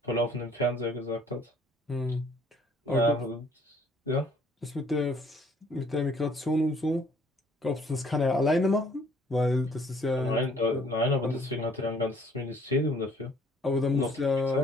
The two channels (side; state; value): both; normal; correlation 0.60